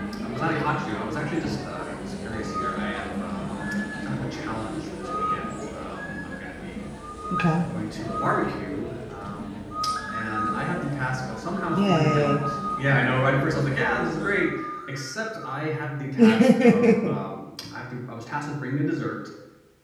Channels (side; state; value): both; identical; correlation 1.00